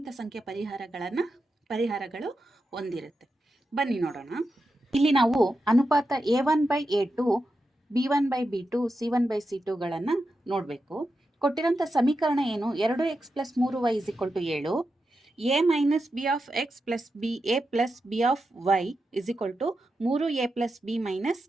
ಸಂಖ್ಯೆ ಪರಿಹಾರಗಳು ಹೊಂದಿರುತ್ತೆ. ಬನ್ನಿ ನೋಡೋಣ. ಇಲ್ಲಿ ನಾವು ಅನುಪಾತ a1/a2 b1/b2 c1/c2ಗಳನ್ನು ನೋಡಬೇಕು. ಕೊಟ್ಟಿರೋಂಥ ಸಮೀಕರಣ ಏನು? 2x plus 3y = 7, a minus b of x plus b a plus b of y = 3a plus b minus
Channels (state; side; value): normal; both; correlation 0.88